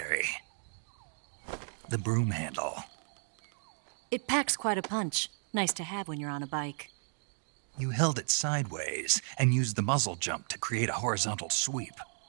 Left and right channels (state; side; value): silent; left; 55 dB below the other